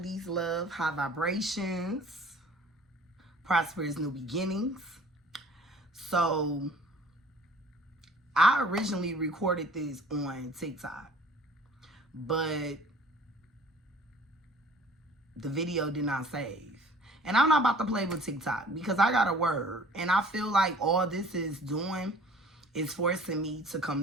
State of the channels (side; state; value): both; normal; correlation 0.50